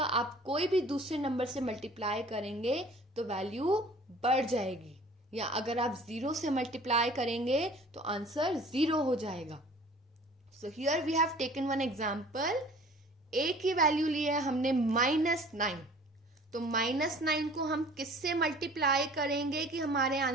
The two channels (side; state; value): both; normal; correlation 0.48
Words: आप कोई भी दूसरे नंबर से मल्टीप्लाई करेंगे तो वैल्यू बढ़ जाएगी, या अगर आप 0 से मल्टीप्लाई करेंगे तो आंसर 0 हो जाएगा। So here we have taken one example. A की वैल्यू ली है हमने -9, तो -9 को हम किससे मल्टीप्लाई करेंगे कि हमारे